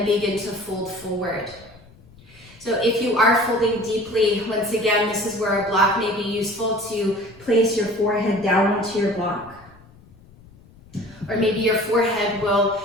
begin to fold forward. So if you are folding deeply, once again, this is where a block may be useful to place your forehead down onto your block. Or maybe your forehead will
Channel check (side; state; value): left; noise; rumble, 24 dB below the sound